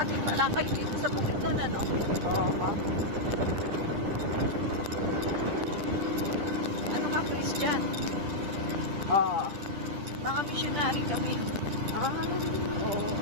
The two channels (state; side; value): late; left; 10 ms